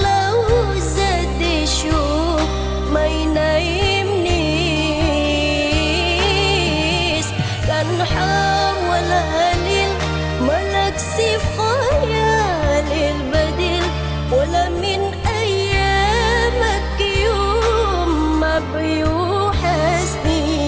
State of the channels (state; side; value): identical; both; correlation 1.00